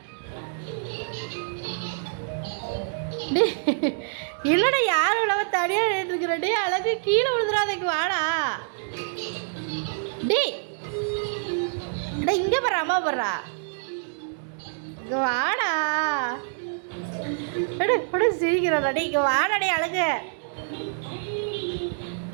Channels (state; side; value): silent; left; digital silence